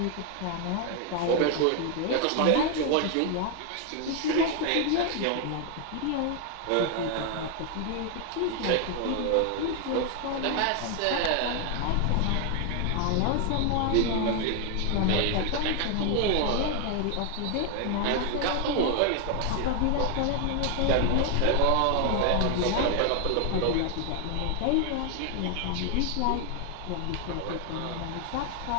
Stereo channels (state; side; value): different; both; correlation 0.00